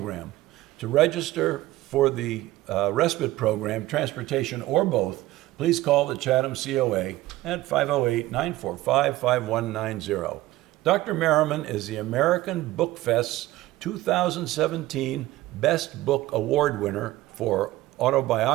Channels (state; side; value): quieter; left; 16.9 dB